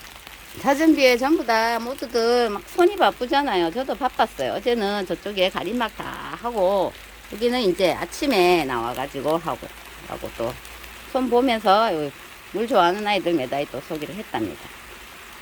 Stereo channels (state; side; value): identical; both; correlation 1.00